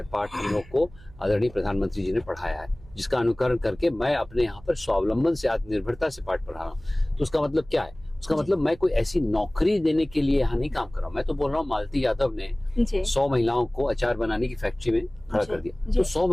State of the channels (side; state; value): right; noise; hum, 22 dB below the sound